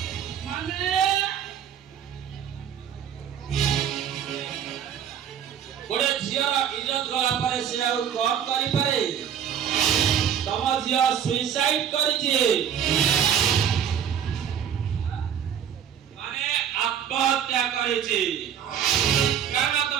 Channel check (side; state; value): left; quieter; 8.8 dB